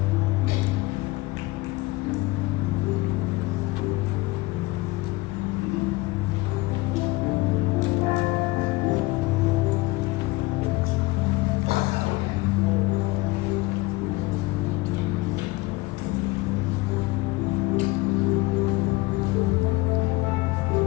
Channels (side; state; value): right; quieter; 21.3 dB